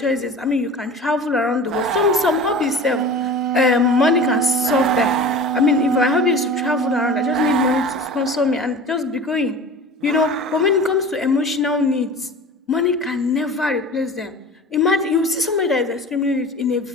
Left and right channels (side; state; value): both; normal; correlation 0.37